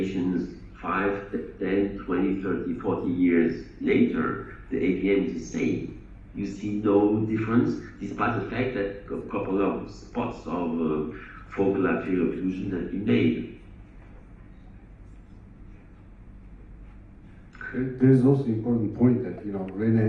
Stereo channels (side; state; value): both; identical; correlation 1.00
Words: 5, 10, 20, 30, 40 years later, the AVM is the same. You see no difference, despite the fact that a couple of spots of focal arterial occlusion have been made. there's also an important point that, you know,